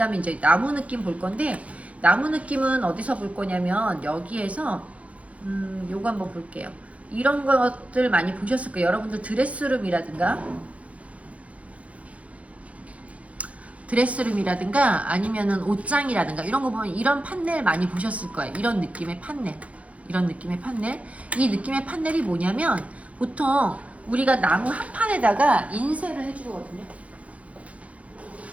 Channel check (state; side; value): late; left; 0.065 ms